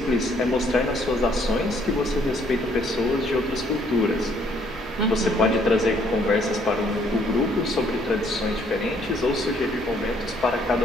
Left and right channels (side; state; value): both; normal; correlation 0.65